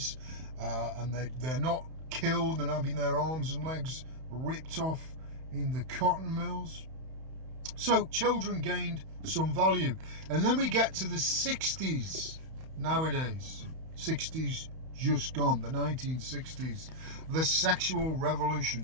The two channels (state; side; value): late; left; 31 ms